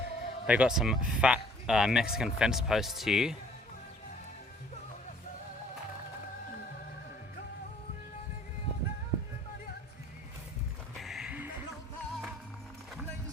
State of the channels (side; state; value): both; normal; correlation 0.57